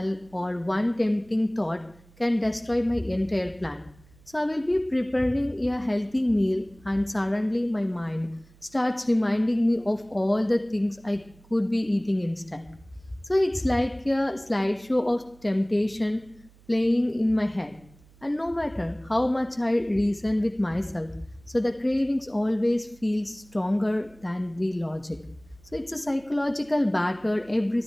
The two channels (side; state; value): right; noise; hum, 27 dB below the sound